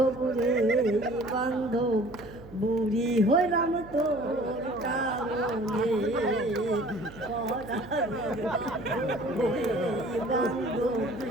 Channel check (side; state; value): right; noise; hum, 18 dB below the sound